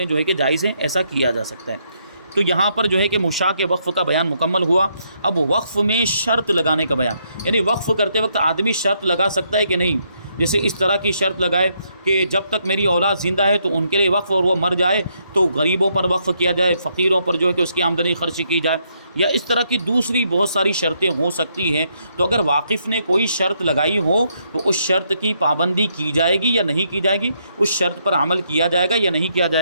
جو ہے کہ جائز ہیں، ایسا کیا جا سکتا ہے۔ تو یہاں پر جو ہے کہ مشاع کے وقف کا بیان مکمل ہوا۔ اب وقف میں شرط لگانے کا بیان، یعنی وقف کرتے وقت آدمی شرط لگا سکتا ہے کہ نہیں، جیسے اس طرح کی شرط لگائے کہ جب تک میری اولاد زندہ ہے تو ان کے لیے وقف، اور وہ مر جائے تو غریبوں پر وقف کیا جائے، فقیروں پر جو ہے کہ اس کی آمدنی خرچ کی جائے، یا اس طرح کی دوسری بہت ساری شرطیں ہو سکتی ہیں۔ تو اگر واقف نے کوئی شرط لگائی ہو تو اس شرط کی پابندی کی جائے گی یا نہیں کی جائے گی، اس شرط پر عمل کیا جائے گا یا نہیں کیا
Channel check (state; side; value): inverted; both; correlation -0.75